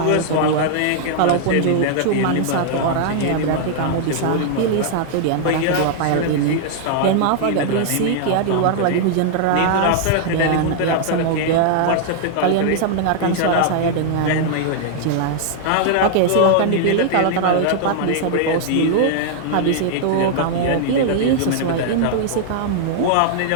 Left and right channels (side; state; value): both; different; correlation -0.01